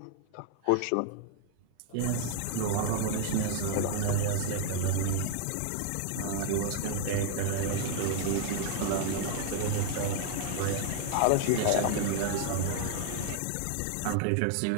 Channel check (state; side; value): different; both; correlation 0.00